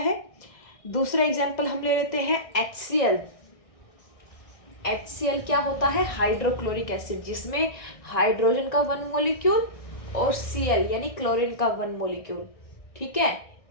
दूसरा एग्जाम्पल हम ले लेते हैं HCl। HCl क्या होता है, हाइड्रोक्लोरिक एसिड, जिसमें हाइड्रोजन का 1 मॉलिक्यूल और Cl यानी क्लोरीन का 1 मॉलिक्यूल। ठीक है,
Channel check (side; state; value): right; late; 1.6 ms